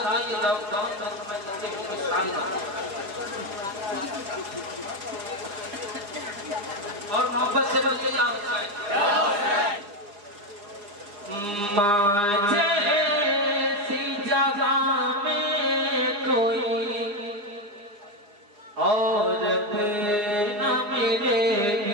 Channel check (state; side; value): late; left; 4.9 ms